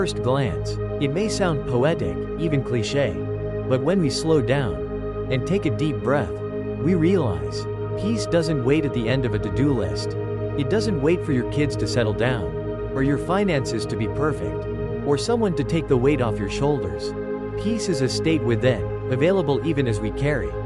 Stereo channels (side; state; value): both; identical; correlation 1.00